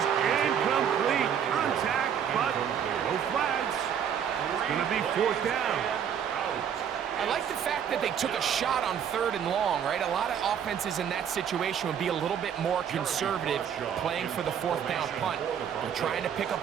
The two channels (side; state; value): left; quieter; 8.4 dB